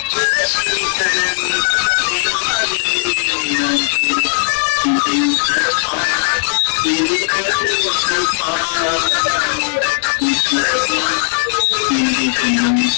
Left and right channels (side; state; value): right; silent; digital silence